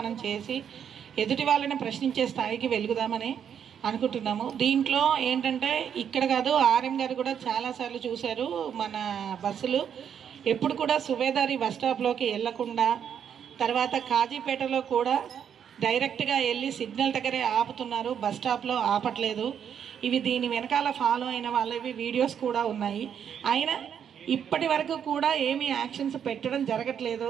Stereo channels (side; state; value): left; quieter; 8.3 dB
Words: చేసి ఎదుటి వాళ్ళని ప్రశ్నించే స్థాయికి వెలుగుదామని అనుకుంటున్నాము. దీంట్లో ఏంటంటే ఇక్కడ కాదు, ఆర్ఎం గారు కూడా చాలాసార్లు చూశారు, మన బస్సులు ఎప్పుడు కూడా సుబేదారి బస్ స్టాప్లోకి వెళ్లకుండా, తర్వాత కాజీపేటలో కూడా డైరెక్ట్గా వెళ్ళి సిగ్నల్ దగ్గరే ఆపుతున్నారు, బస్ స్టాప్లో ఆపట్లేదు. ఇవి దీని వెనకాల ఫాలో అయిన వాళ్ళవి వీడియోస్ కూడా ఉన్నాయి. అయినా ఇప్పటి వరకు కూడా ఏమీ యాక్షన్స్ పెట్టడం జరగట్లేదు.